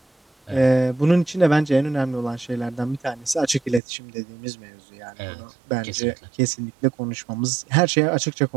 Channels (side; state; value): left; drops out; at 3.8 s